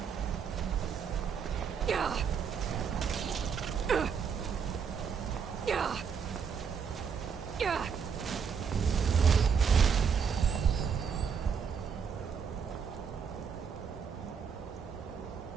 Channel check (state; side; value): quieter; left; 6.6 dB